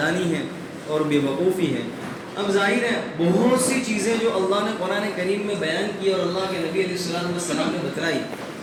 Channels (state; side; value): identical; both; correlation 1.00